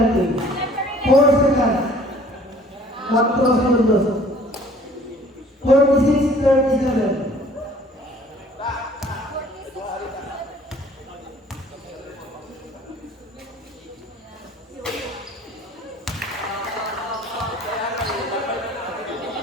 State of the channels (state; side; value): normal; both; correlation 0.54